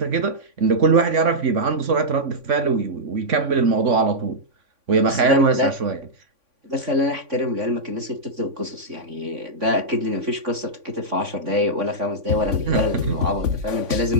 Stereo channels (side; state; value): left; late; 3.5 ms